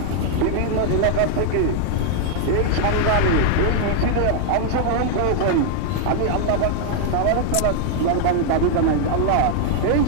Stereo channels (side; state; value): both; different; correlation 0.00